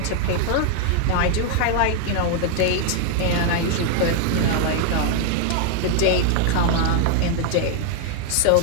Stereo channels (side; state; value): both; different; correlation 0.00